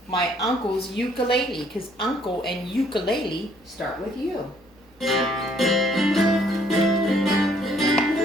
my uncle's ukulele. Because uncle and ukulele start with U.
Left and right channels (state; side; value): noise; right; hum, 29 dB below the sound